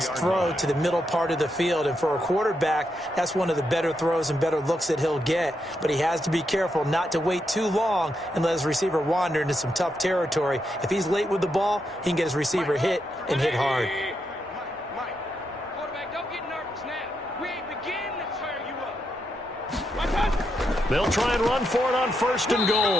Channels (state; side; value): normal; both; correlation 0.82